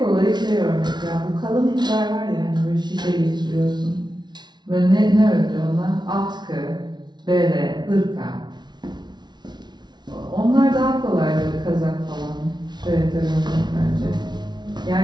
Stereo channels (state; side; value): late; left; 0.20 ms